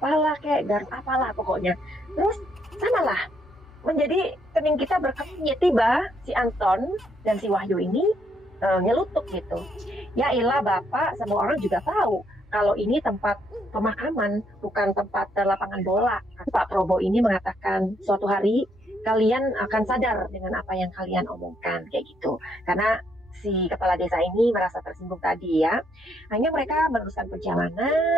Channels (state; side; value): normal; both; correlation 0.73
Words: kayak garuk apalah pokoknya. Terus samalah menjadi kening kita berkepnya, tiba si Anton dan si Wahyu ini nyelutuk gitu. Ya ilah Bapak, semua orang juga tahu kalau ini tempat pemakaman, bukan tempat lapangan bola. Pak Probo ini mengatakan suatu hari kalian akan sadar dengan apa yang kalian omongkan kayak gitu. Karena si kepala desa ini merasa tersinggung tadi ya. Hanya mereka meneruskan